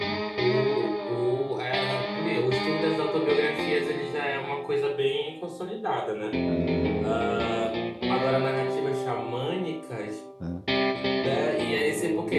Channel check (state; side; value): identical; both; correlation 1.00